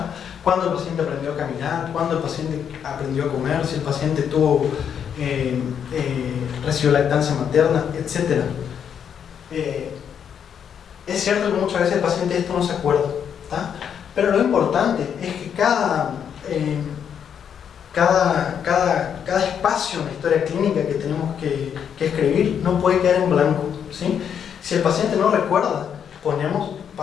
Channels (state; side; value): quieter; right; 8.1 dB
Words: ¿Cuándo el paciente aprendió a caminar? ¿Cuándo el paciente aprendió a comer? Si el paciente recibió lactancia materna, etc. Es cierto que muchas veces el paciente esto no se acuerda, ¿tá? Pero lo importante es que cada espacio en la historia clínica que tenemos que escribir no puede quedar en blanco, ¿sí? Si el paciente no recuerda, ponemos